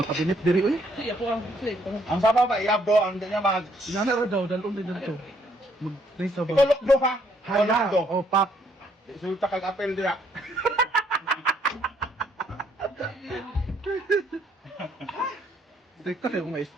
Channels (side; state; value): both; normal; correlation 0.68